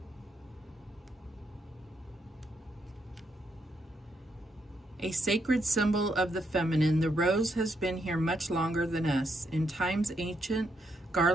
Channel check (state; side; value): normal; both; correlation 0.78